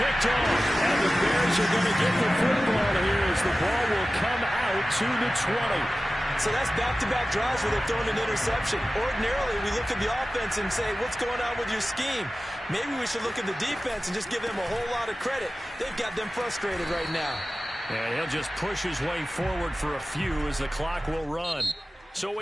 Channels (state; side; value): normal; both; correlation 0.95